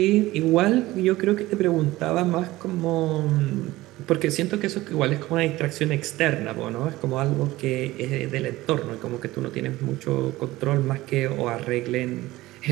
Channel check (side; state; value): left; quieter; 17.9 dB